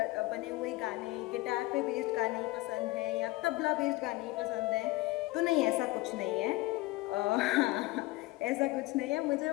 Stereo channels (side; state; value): right; quieter; 20.6 dB